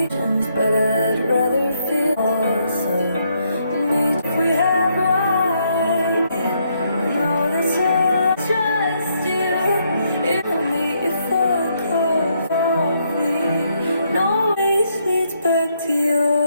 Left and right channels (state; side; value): inverted; both; correlation -0.75